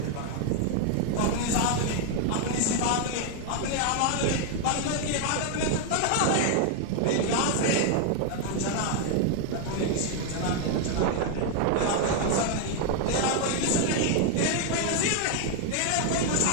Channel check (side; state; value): both; different; correlation 0.01